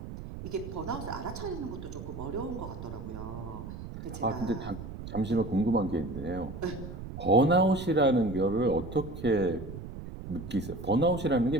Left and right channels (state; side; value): noise; right; rumble, 10 dB below the sound